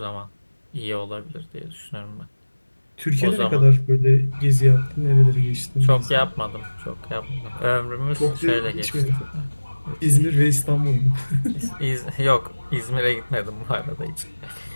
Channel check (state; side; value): inverted; both; correlation -1.00